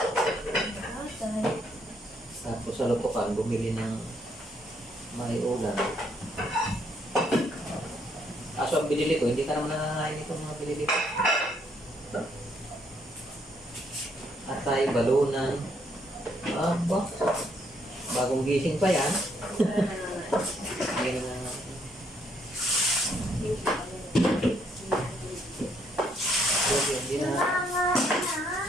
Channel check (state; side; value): normal; both; correlation 0.71